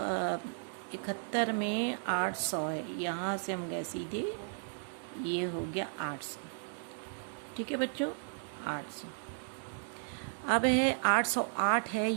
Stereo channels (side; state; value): left; silent; digital silence